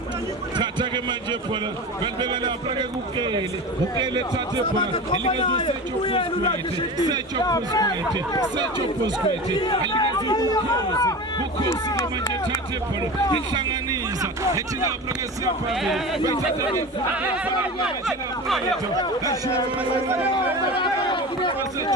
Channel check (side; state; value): both; normal; correlation 0.30